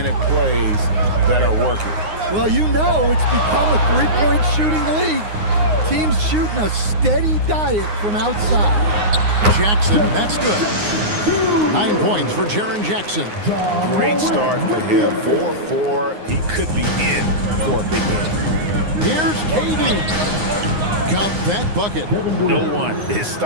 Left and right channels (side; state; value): left; late; 9.6 ms